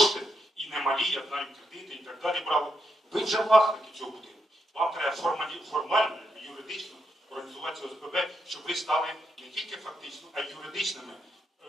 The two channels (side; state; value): both; normal; correlation 0.82